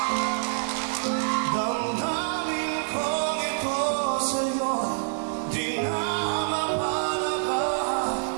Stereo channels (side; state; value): left; silent; digital silence